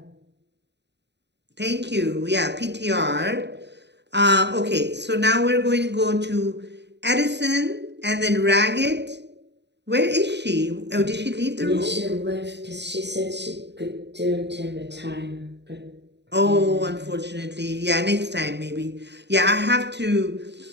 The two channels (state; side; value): late; left; 0.50 ms